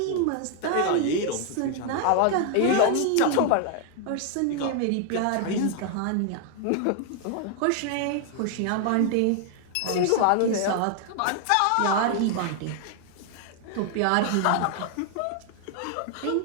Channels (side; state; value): both; different; correlation 0.00